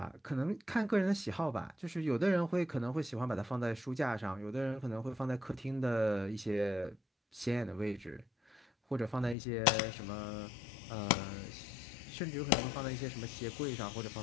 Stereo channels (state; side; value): drops out; right; at 9.3 s